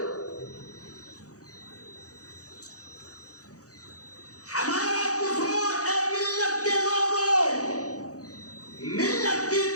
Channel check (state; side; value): late; right; 0.66 ms